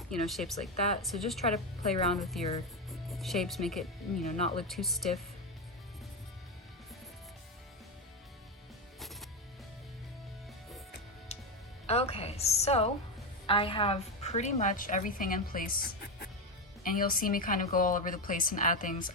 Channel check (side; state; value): both; normal; correlation 0.11